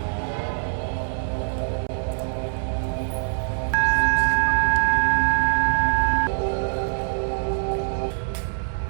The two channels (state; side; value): silent; left; digital silence